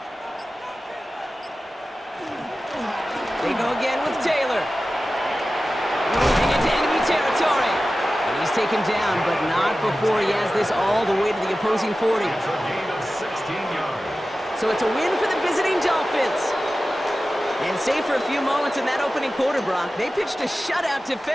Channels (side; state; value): both; normal; correlation 0.95